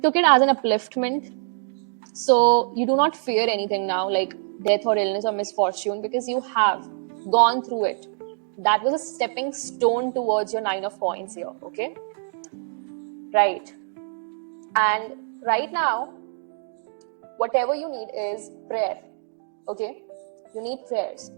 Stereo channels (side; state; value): left; silent; digital silence